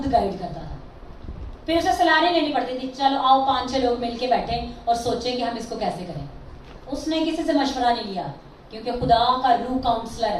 गाइड करता था। फिर उसे सलाह नहीं लेनी पड़ती थी, चलो आओ 5-6 लोग मिलके बैठे और सोचें कि हम इसको कैसे करें। उसने किसी से मशवरा नहीं लिया, क्योंकि खुदा का रूह काउंसलर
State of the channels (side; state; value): both; identical; correlation 1.00